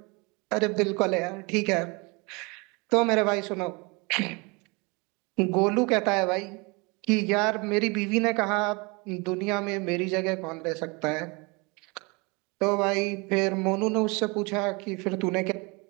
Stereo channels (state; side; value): quieter; left; 28.3 dB